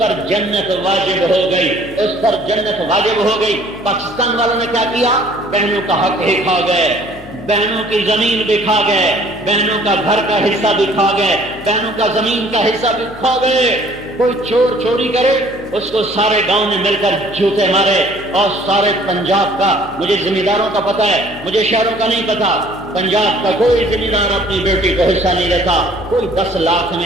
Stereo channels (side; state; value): left; noise; hum, 20 dB below the sound